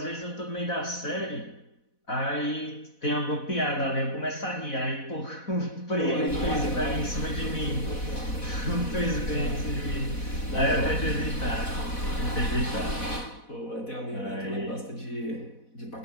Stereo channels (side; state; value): right; late; 4.1 ms